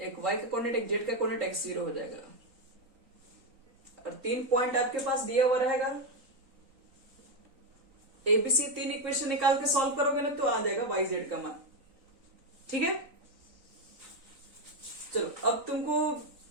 वाई का कोऑर्डिनेट, एक जेड का कोऑर्डिनेट, x0 हो जाएगा। और 3 पॉइंट आपके पास दिया हुआ रहेगा। एबीसी 3 इक्वेशन निकाल के सॉल्व करोगे ना तो आ जाएगा वाई जेड का मान। ठीक है, चलो अब तुमको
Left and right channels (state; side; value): late; left; 3.9 ms